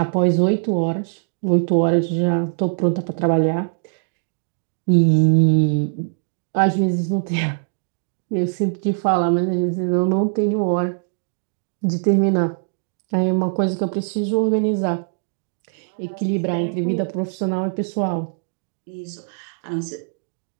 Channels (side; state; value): left; silent; digital silence